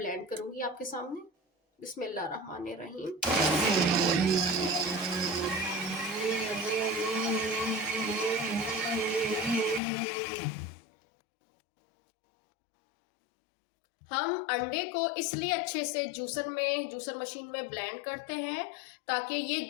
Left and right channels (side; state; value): right; drops out; at 9.8 s